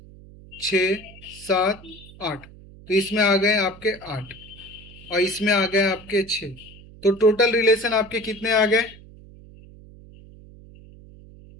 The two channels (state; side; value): noise; right; hum, 20 dB below the sound